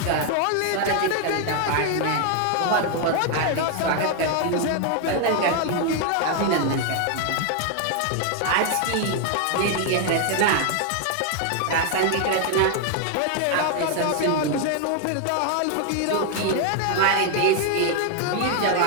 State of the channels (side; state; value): both; different; correlation 0.00